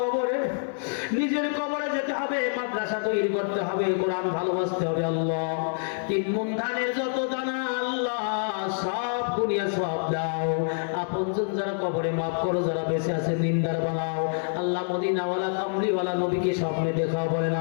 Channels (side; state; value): right; silent; 60 dB below the other